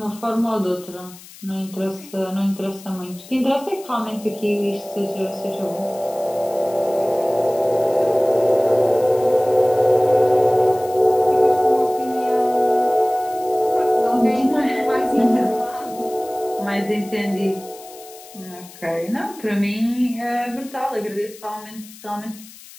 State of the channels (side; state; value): left; noise; hiss, 19 dB below the sound